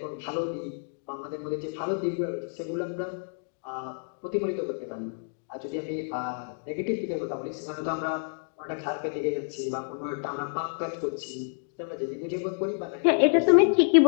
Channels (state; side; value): silent; right; digital silence